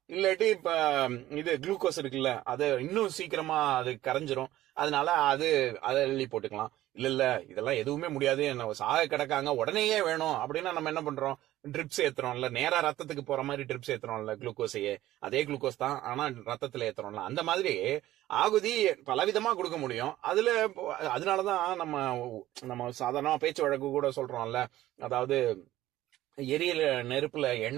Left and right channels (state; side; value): quieter; left; 14.8 dB